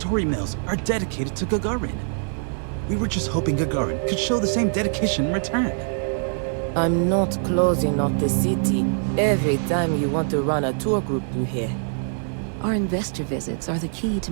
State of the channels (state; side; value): silent; left; digital silence